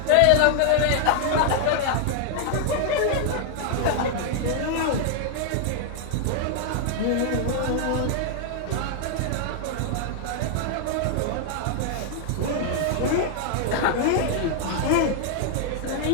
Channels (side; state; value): both; different; correlation 0.00